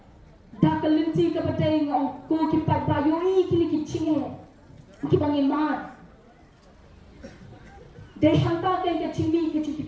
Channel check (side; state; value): both; identical; correlation 1.00